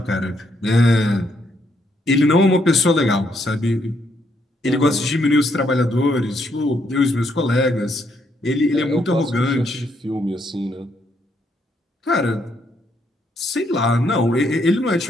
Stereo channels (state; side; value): normal; both; correlation 0.74